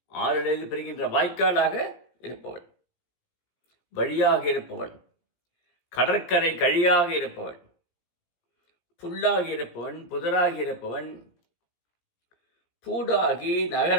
ஆறிலிருந்து பிரிகின்ற வாய்க்காலாக இருப்பவன். வழியாக இருப்பவன், கடற்கரை கழியாக இருப்பவன். புல்லாகி இருப்பவன், புதராகி இருப்பவன். பூடாகி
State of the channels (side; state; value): right; late; 17 ms